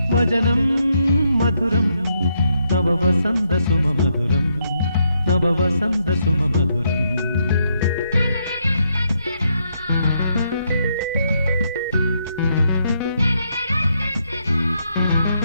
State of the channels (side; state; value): both; inverted; correlation -0.77